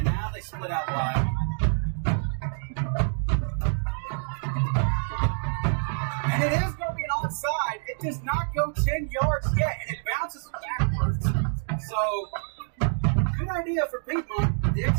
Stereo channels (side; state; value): left; silent; digital silence